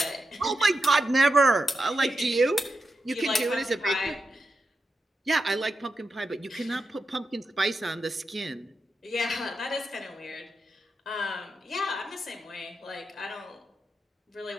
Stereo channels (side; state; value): both; normal; correlation 0.88